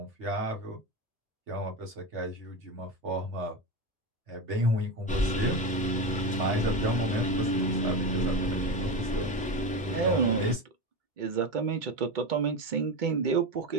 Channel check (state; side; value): normal; both; correlation 0.19